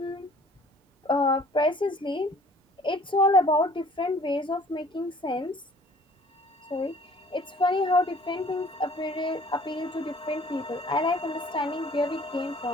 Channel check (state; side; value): normal; both; correlation 0.53